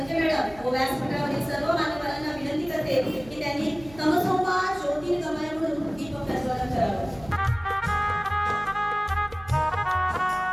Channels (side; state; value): right; noise; hum, 20 dB below the sound